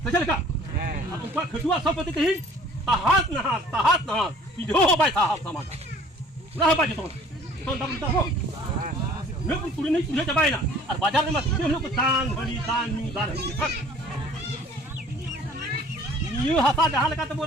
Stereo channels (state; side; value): normal; both; correlation 0.52